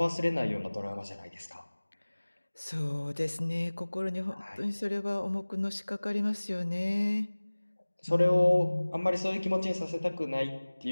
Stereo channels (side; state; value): both; inverted; correlation -1.00